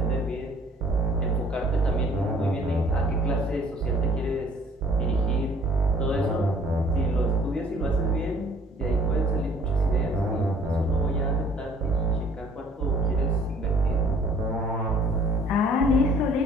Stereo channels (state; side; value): normal; both; correlation 0.56